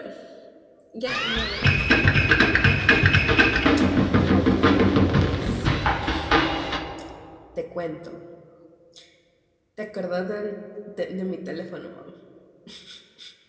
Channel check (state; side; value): identical; both; correlation 1.00